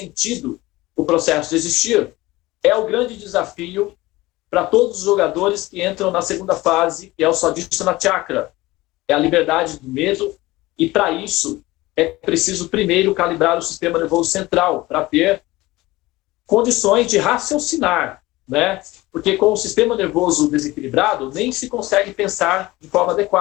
o processo de existir, é o grande desafio para todos os jogadores que entram na segunda fase, que é o Swadhisthana Chakra. É a liberdade do medo, e para isso é preciso primeiro calibrar o sistema nervoso central, para ter condições de raciocinar, né? Porque com o sistema nervoso desequilibrado, nem se consegue pensar de forma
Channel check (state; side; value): quieter; right; 19.3 dB